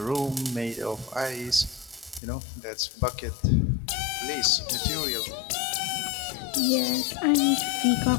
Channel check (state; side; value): drops out; right; at 2.2 s